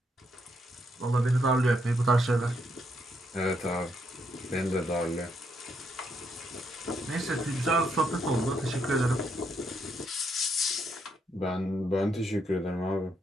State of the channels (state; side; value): normal; both; correlation 0.76